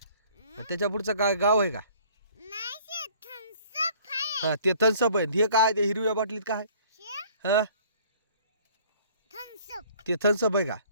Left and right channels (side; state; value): both; inverted; correlation -0.54